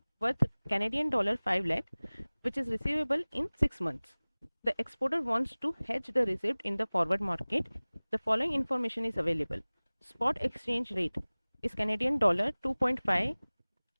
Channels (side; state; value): both; inverted; correlation -1.00